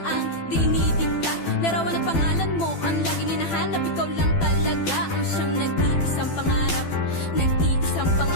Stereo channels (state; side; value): late; right; 12 ms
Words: ang dinidikta. Larawan at pangalan mo ang laging hinahanap, ikaw lang talaga ang siyang nag-iisang pangarap. Nag-iisang